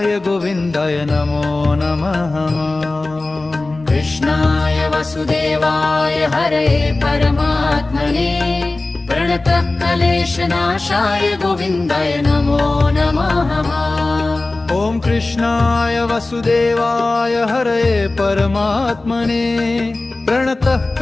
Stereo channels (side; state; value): right; quieter; 3.1 dB